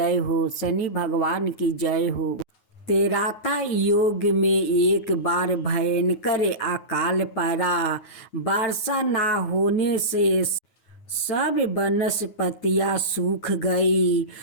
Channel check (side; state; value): right; late; 9.4 ms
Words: हो, शनि भगवान की जय हो। तेराता योग में एक बार भयंकर अकाल पड़ा। वर्षा ना होने से सब वनस्पतियां सूख गई।